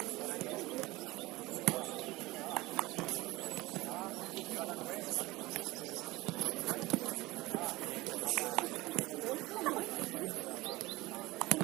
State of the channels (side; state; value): left; quieter; 20.2 dB